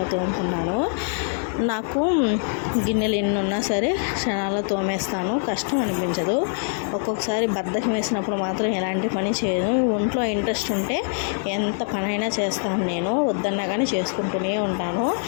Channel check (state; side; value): silent; right; 63 dB below the other